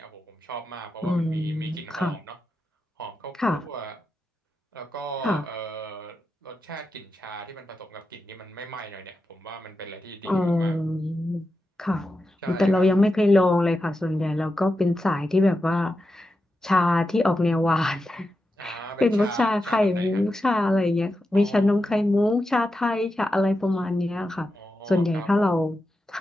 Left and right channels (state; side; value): normal; both; correlation 0.89